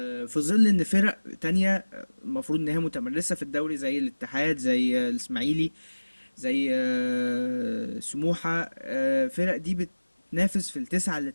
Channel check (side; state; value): both; inverted; correlation -1.00